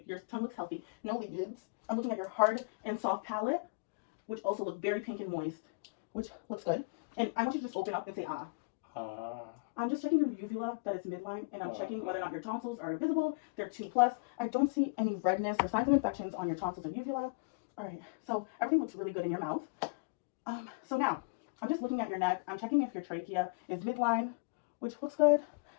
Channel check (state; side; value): quieter; right; 32.4 dB